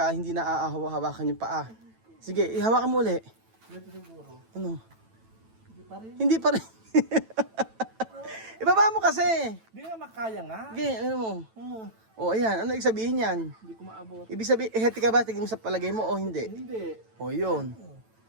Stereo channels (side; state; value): left; late; 9.0 ms